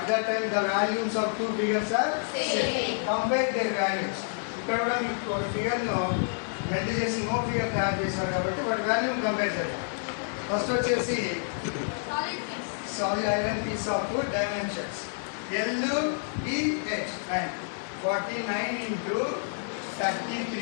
that time the values of two figures are same. Compare their values. ఇక్కడ కూడా మీకు ఫిగర్ ను మెల్ట్ చేసి ఇంకో ఫిగర్ తయారు చేశారు కాబట్టి వాటి వాల్యూమ్ కంపేర్ చేద్దాం. ఫస్ట్ వచ్చేసి solid iron piece of two dimensions LBH, and 49 into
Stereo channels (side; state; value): right; silent; digital silence